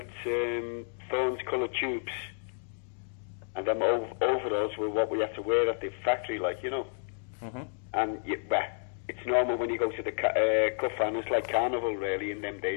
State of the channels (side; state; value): right; silent; digital silence